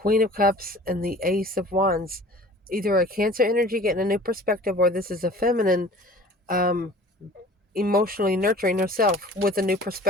of Cups and the Ace of Wands. Either a Cancer energy getting a new perspective, or this is a feminine emotionally nurturing herself with a new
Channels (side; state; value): both; normal; correlation 0.46